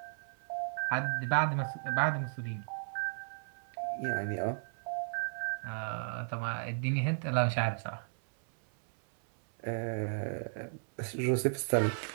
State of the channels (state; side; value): silent; left; 55 dB below the other